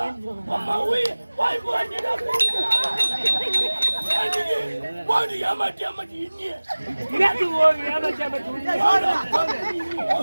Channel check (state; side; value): inverted; both; correlation -1.00